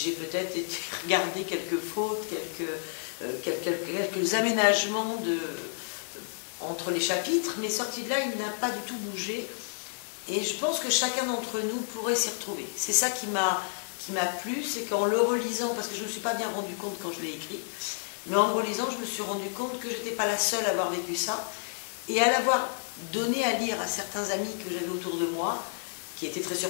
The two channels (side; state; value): right; silent; digital silence